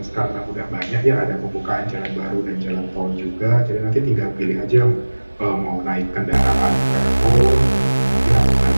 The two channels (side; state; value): both; inverted; correlation -1.00